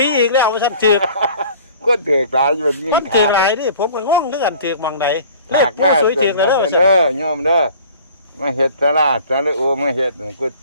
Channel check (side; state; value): both; inverted; correlation -0.48